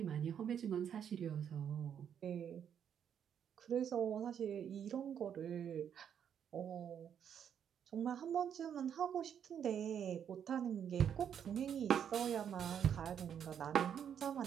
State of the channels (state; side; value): quieter; left; 8.5 dB